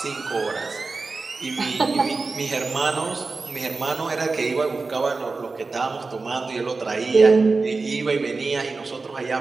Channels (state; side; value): quieter; left; 4.0 dB